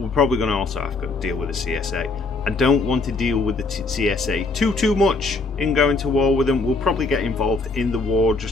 probably gonna also have to deal with the CSA. I don't want to deal with the CSA too much in going to war with them. We'll probably get involved in the war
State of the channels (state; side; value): quieter; right; 3.6 dB